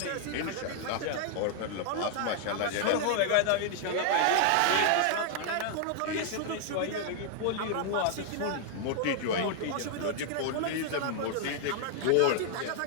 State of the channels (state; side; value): different; both; correlation 0.00